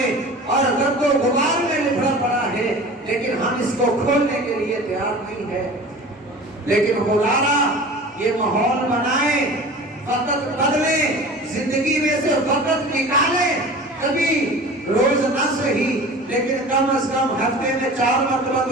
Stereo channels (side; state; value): both; normal; correlation 0.39